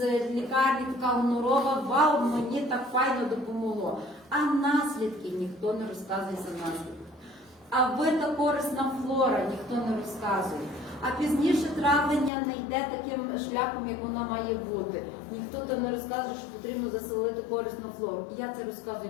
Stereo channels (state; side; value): drops out; right; at 12.3 s